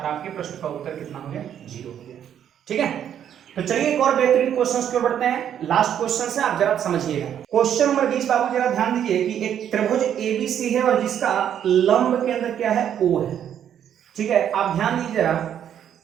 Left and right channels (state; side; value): quieter; left; 9.6 dB